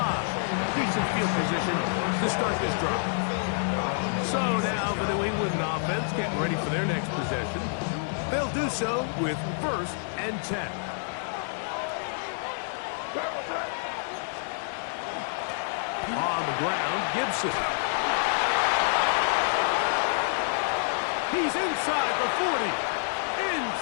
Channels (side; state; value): right; silent; digital silence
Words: Decent field position to start this drive. So now the New England offense getting ready for their next possession. They'll do so with 1st and 10. On the ground, Gibson. He's inside the 40,